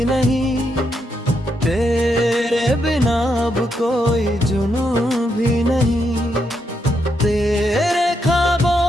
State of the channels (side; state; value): both; normal; correlation 0.80